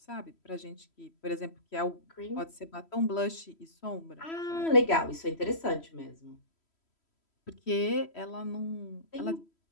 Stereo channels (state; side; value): late; right; 3.1 ms